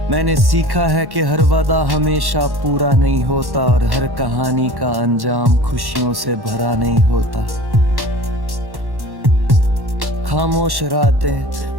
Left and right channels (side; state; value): left; late; 1.1 ms